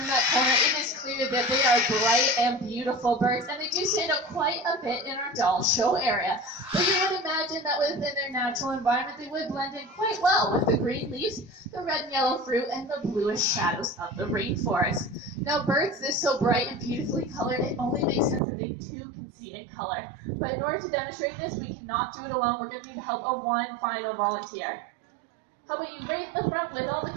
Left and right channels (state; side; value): drops out; left; at 18.4 s